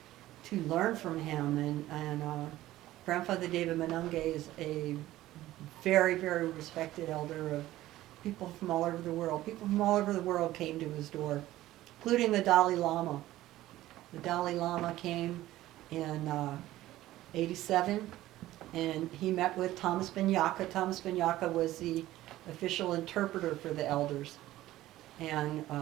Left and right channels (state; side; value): quieter; left; 15.4 dB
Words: to learn from him. And Grandfather David Manunge is a very, very respected elder of people from all over the world. People from all over the world came to his door, including the Dalai Lama. The Dalai Lama came in 87, and he met with Thomas Ben Yaka. Thomas Ben Yaka was the official interpreter for the elders. And